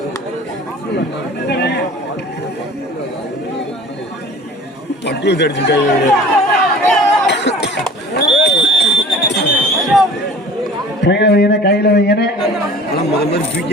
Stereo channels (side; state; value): both; normal; correlation 0.44